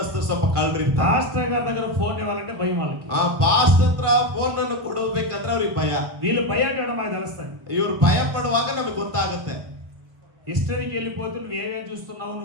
ಸ್ವಲ್ಪ ಕಳ್ರಿ. పాస్టర్ గారి దగ్గర ఫోన్ ఇవ్వాలంటే భయం వాళ్ళకి. ಪಾಸ್ಟರ್ ಹತ್ರ ಫೋನ್ ಅನ್ನು ಕೊಡಬೇಕಂದ್ರೆ ಅವ್ರಿಗೆ ಭಯ. వీళ్ళు భయపడడం మాకు తెలుస్తుంది. ಇವ್ರು ಭಯ ಪಡುವಾಗ ನಮಗೆ ಗೊತ್ತಾಗುತ್ತೆ. హిస్టరీకి వెళ్ళిపోతే నువ్వు ఏమేమి చూస్తున్నావు,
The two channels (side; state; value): left; late; 1.5 ms